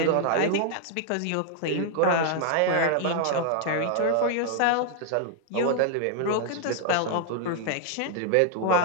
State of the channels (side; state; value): both; different; correlation 0.00